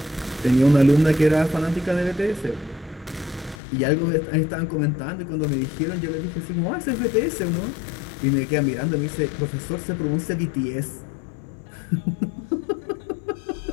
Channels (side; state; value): right; drops out; at 3.6 s